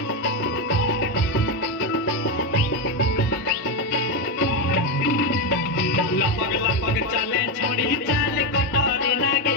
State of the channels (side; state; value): both; normal; correlation 0.10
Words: लपक लपक चले छोड़ी चाल कटोरी लागे